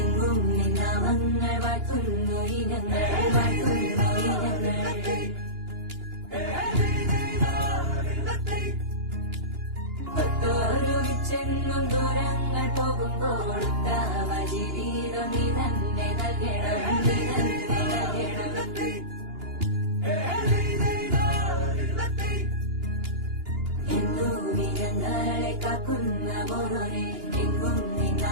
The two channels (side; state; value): left; late; 2.9 ms